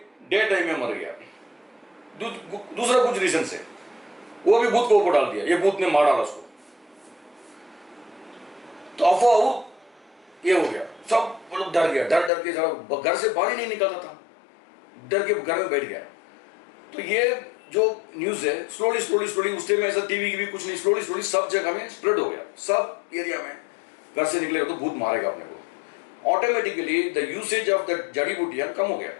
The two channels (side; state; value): right; drops out; at 12.3 s